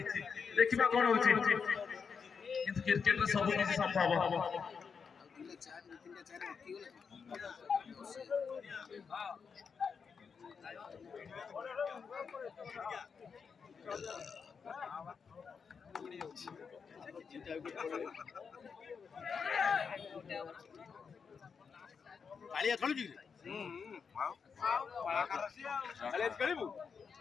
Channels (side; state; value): right; quieter; 5.9 dB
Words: ଦେଖିବା কোন হଉଛି কিন্তু ক্রিকেটରେ ସବୁ କିଛି ସମ୍ଭବ କାଳିଆ ଖେଳୁଛି